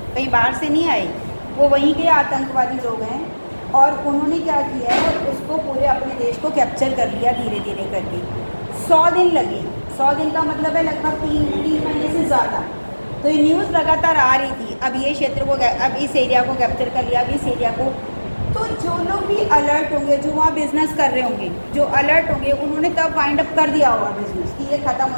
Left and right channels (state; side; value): inverted; both; correlation -1.00